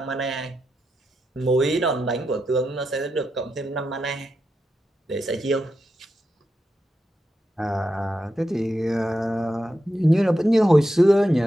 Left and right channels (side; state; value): both; normal; correlation 0.87